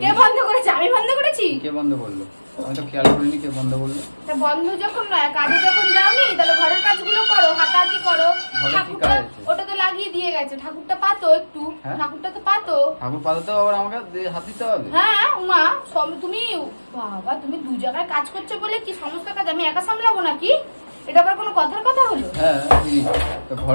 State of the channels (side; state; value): both; inverted; correlation -1.00